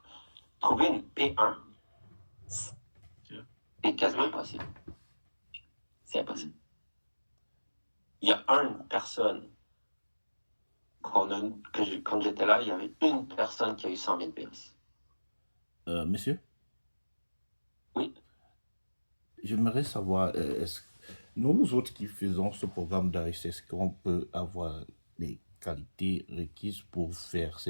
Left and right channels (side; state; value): both; inverted; correlation -1.00